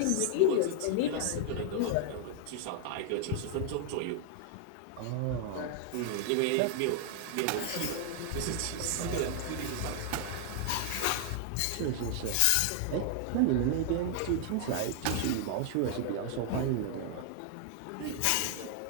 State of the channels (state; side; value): different; both; correlation 0.00